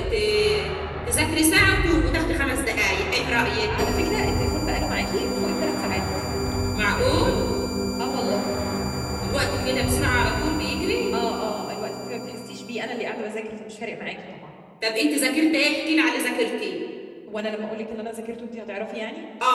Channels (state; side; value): identical; both; correlation 1.00